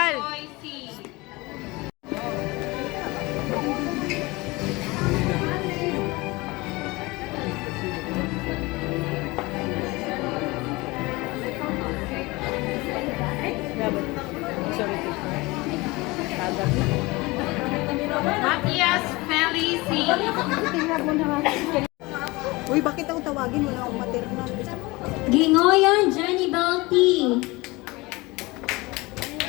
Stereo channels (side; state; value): right; quieter; 22.9 dB